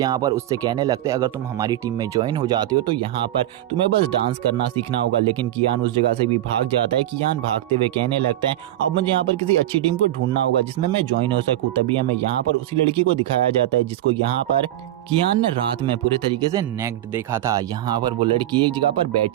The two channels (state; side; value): quieter; left; 13.6 dB